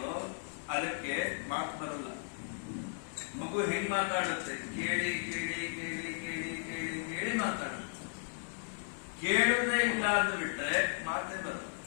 ಅದಕ್ಕೆ ಮಾತು ಬರಲ್ಲ. ಮಗು ಹೆಂಗ್ ಮಾತಾಡುತ್ತೆ? ಕೇಳಿ ಕೇಳಿ ಕೇಳಿ ಕೇಳಿ ಕೇಳಿ ಕೇಳಿ ಮಾತಾಡುತ್ತೆ. ಕೇಳುವುದೇ ಇಲ್ಲ ಅಂತ ಬಿಟ್ರೆ ಮಾತೇ ಬರಲ್ಲ.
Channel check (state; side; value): silent; right; digital silence